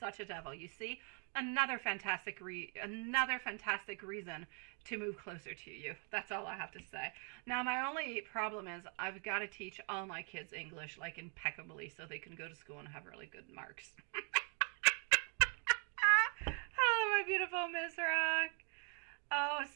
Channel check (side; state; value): left; quieter; 39.5 dB